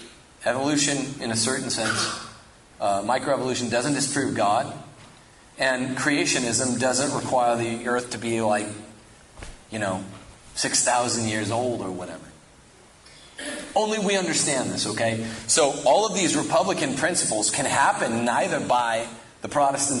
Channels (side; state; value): both; identical; correlation 1.00